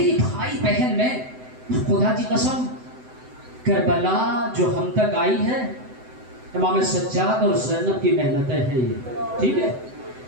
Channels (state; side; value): late; left; 7.9 ms